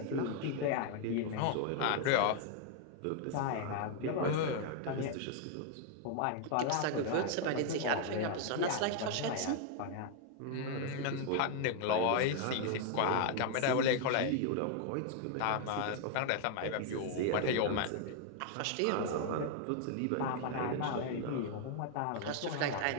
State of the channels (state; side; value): different; both; correlation 0.00